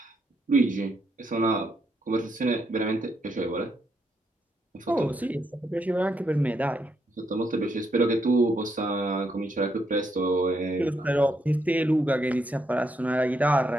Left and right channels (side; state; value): both; normal; correlation 0.78